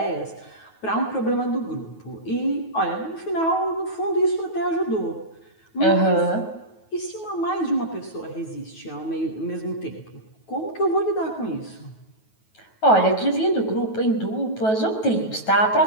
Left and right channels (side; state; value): right; late; 9.2 ms